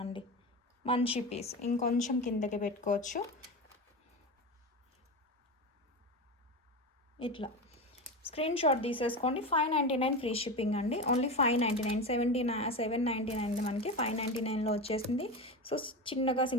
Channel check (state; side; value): normal; both; correlation 0.22